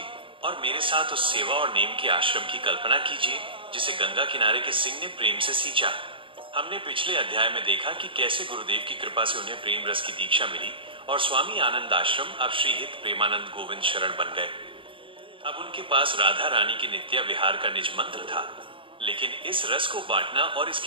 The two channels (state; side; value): late; left; 0.25 ms